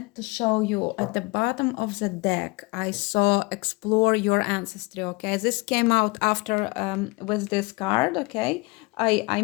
to show you at the bottom of the deck, I saw explore your ancestry, okay? This came out after with this card, okay? I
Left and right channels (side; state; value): right; quieter; 26.1 dB